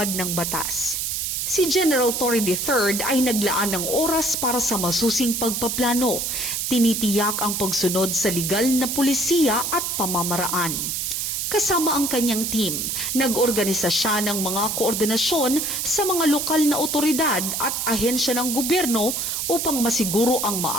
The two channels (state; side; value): noise; right; hiss, 1 dB below the sound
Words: ng batas. Si General Torre III ay naglaan ng oras para sa masusing pagpaplano, tinitiyak ang pagsunod sa legal na pulisiya at pamamaraan. Kasama ang kanyang team, nag-organisa siya ng mga koordinasyon sa mga lokal na otoridad at ahensya ng gobyerno upang masiguro ang